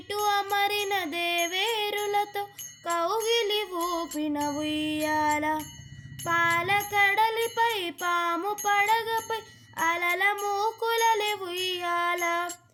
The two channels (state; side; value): identical; both; correlation 1.00